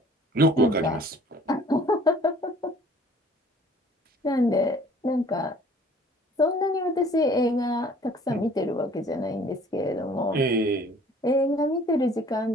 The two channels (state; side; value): normal; both; correlation 0.53